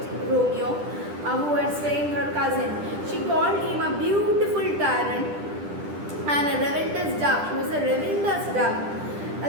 Romeo, who had slain her cousin. She called him a beautiful tyrant and a relentless dove. She was a relentless dove,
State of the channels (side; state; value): left; late; 10 ms